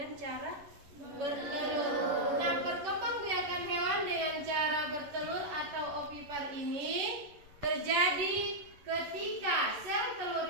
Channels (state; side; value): late; left; 11 ms